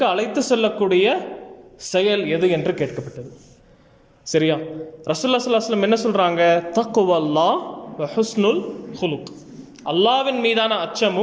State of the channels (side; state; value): both; identical; correlation 1.00